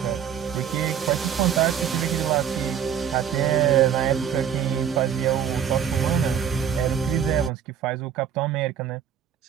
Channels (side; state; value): left; quieter; 8.6 dB